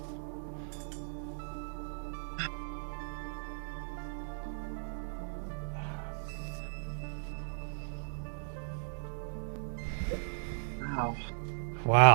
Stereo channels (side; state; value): left; silent; digital silence